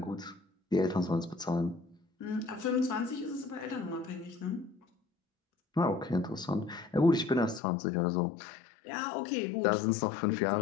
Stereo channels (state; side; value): drops out; right; at 7.6 s